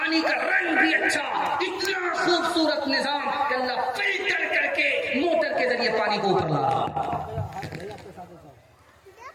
का रंग भी अच्छा, इतना खूबसूरत निजाम कि अल्लाह फिल्टर करके मोटर के जरिए पानी को ऊपर ला रहा।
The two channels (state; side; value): identical; both; correlation 1.00